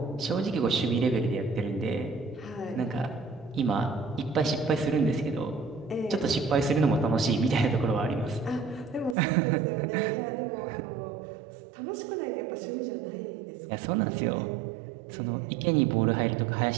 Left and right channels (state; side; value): drops out; left; at 9.2 s